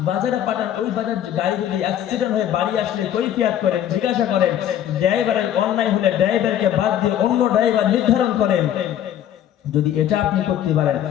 বাজারে পাঠান, ওই বাজার গাড়ি যদি অ্যাক্সিডেন্ট হয়ে বাড়ি আসলে কৈফিয়ত করেন, জিজ্ঞাসা করেন, ড্রাইভারের অন্যায় হলে ড্রাইভারকে বাদ দিয়ে অন্য ড্রাইভার নির্ধারণ করেন, যদি এটা আপনি করতে পারেন,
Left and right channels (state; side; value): quieter; right; 10.7 dB